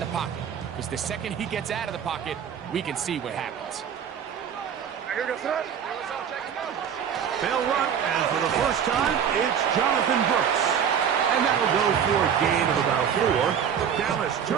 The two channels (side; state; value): left; quieter; 8.1 dB